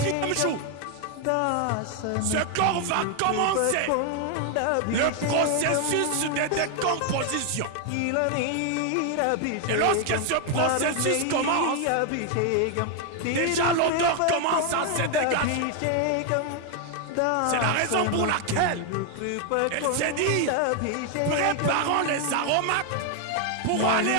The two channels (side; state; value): both; different; correlation 0.01